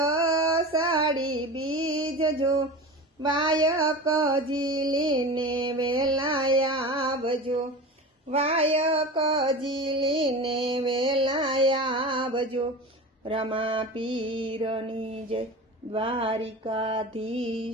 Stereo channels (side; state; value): both; normal; correlation 0.31